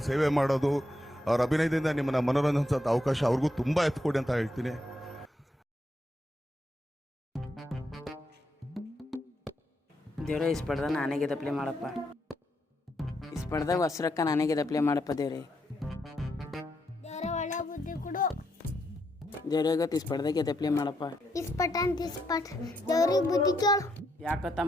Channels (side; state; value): both; normal; correlation 0.79